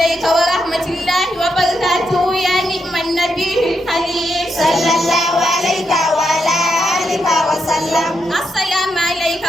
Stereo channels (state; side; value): normal; both; correlation 0.82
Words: ورحمة الله وبركاته يا نعم النبي الحليم. صلى الله عليك وعلى آلك وسلم. السلام عليك